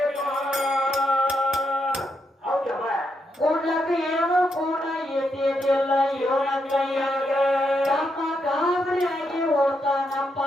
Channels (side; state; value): both; normal; correlation 0.80